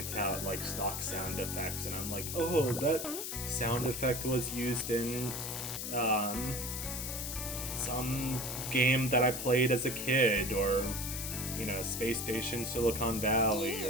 out, like, stock sound effects, and I'm like, oh, that sound effect was used in, some game that I played as a kid, or, you know, Space Station Silicon Valley,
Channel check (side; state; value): left; noise; hiss, 4 dB below the sound